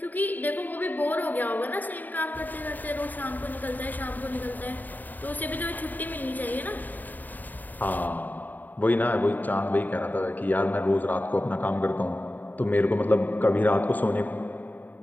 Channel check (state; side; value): late; right; 0.085 ms